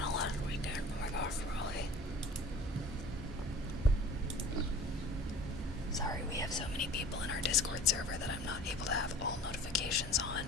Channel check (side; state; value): both; normal; correlation 0.42